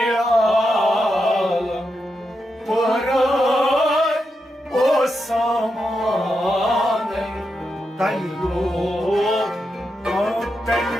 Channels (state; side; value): normal; both; correlation 0.86